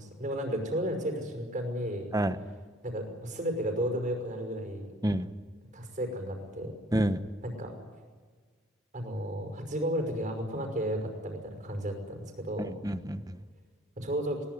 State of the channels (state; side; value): normal; both; correlation 0.55